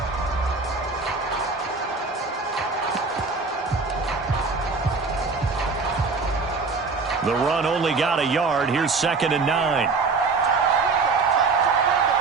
The run only got a yard. Here's 2nd and 9.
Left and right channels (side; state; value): left; quieter; 4.3 dB